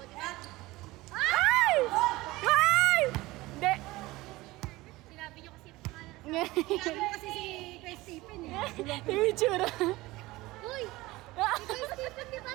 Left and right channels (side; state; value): left; quieter; 19.6 dB